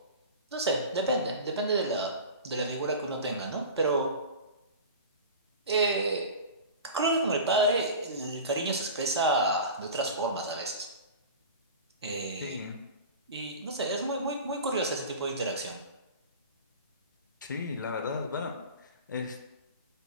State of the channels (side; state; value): both; inverted; correlation -0.34